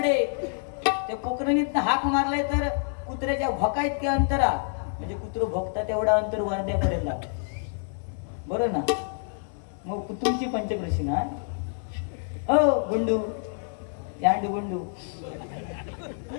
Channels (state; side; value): silent; right; 60 dB below the other